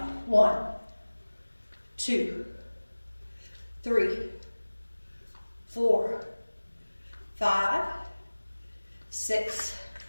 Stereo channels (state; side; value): inverted; both; correlation -1.00